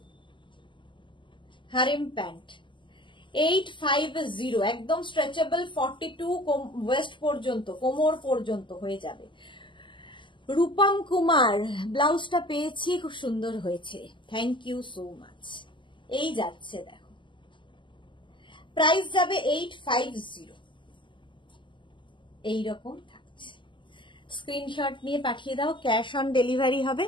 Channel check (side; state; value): right; late; 0.24 ms